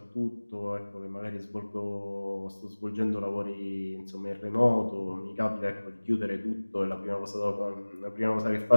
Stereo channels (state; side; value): inverted; both; correlation -1.00